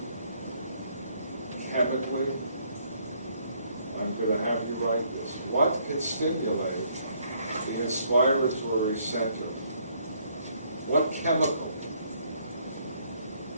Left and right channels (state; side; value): inverted; both; correlation -0.68